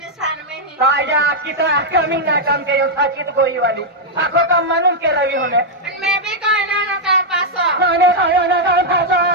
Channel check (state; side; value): normal; both; correlation -0.04